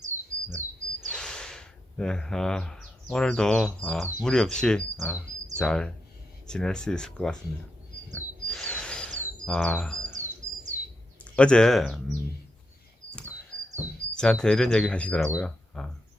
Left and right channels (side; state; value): both; normal; correlation 0.84